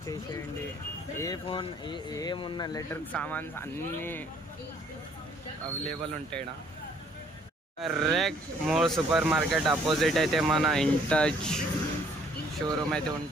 ఏ ఫోన్ ఏమున్న ఎలక్ట్రిక్ సామాన్స్ అన్నీ అవైలబుల్ ఉంటాయి. Correct more super market opposite అయితే మన ఇంటచ్ షోరూమ్ అయితే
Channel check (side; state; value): both; normal; correlation 0.62